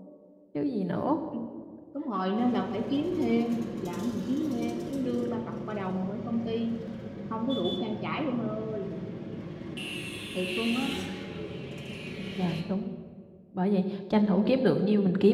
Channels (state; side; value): identical; both; correlation 1.00